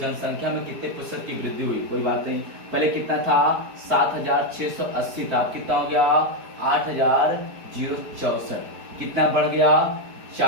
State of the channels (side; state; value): left; late; 4.7 ms